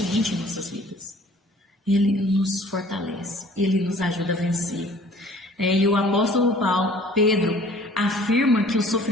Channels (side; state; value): both; normal; correlation 0.52